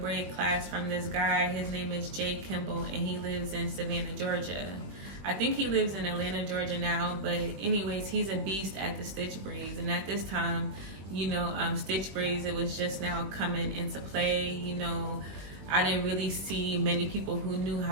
class from this guy. His name is Jay Kimball, and he lives in Savannah, Georgia. I think he lives in Atlanta, Georgia now, but anyways, he's a beast at the stitch braids. And at this time, stitch braids, it was just now coming into play. I didn't really see many people who knew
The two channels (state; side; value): late; left; 21 ms